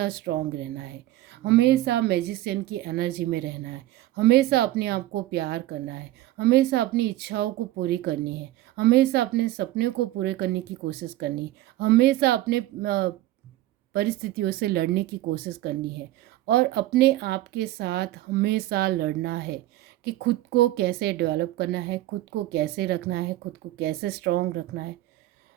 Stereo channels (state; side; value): quieter; left; 15.8 dB